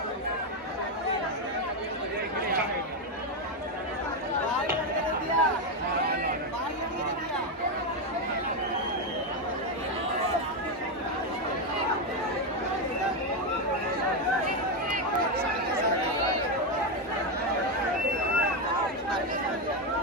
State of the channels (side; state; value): both; normal; correlation 0.07